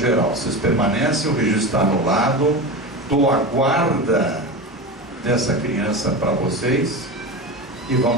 Vocês permanecem, o registro está anulado, dou a guarda dessa criança para vocês e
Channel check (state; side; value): normal; both; correlation 0.24